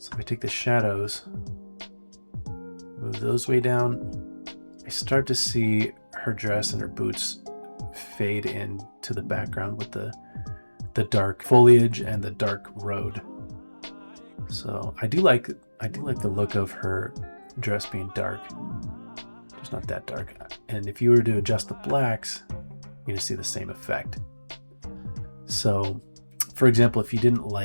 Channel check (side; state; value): both; inverted; correlation -1.00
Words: if I take the shadows, move those way down, I start to see her dress and her boots fade into the background with the dark foliage and the dark road. So I do like the look of her dress being dark, just not that dark. And if you were to adjust the blacks, you're going to see the same effect. So, for example, if you didn't